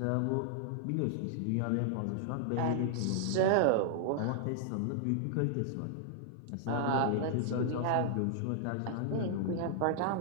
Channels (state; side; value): different; both; correlation -0.01